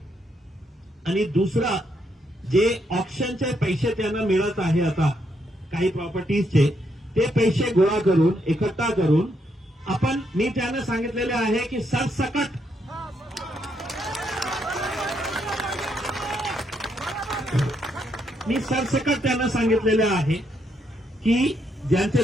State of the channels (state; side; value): normal; both; correlation 0.77